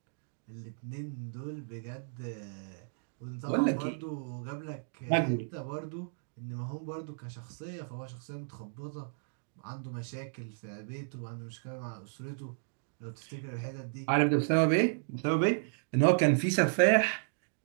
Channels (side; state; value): left; silent; digital silence